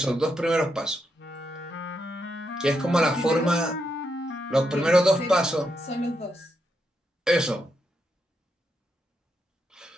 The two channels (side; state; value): both; normal; correlation 0.82